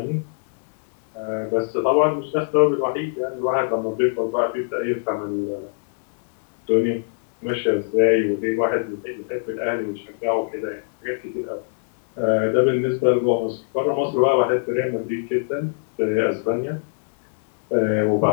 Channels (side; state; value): right; silent; 64 dB below the other